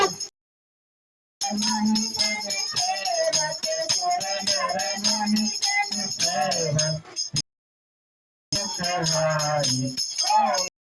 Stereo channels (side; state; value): both; identical; correlation 1.00